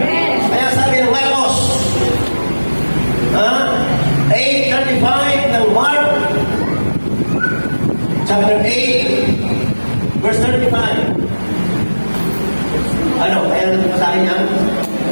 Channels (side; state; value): both; inverted; correlation -1.00